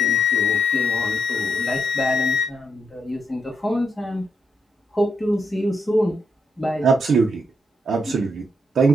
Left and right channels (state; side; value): normal; both; correlation 0.79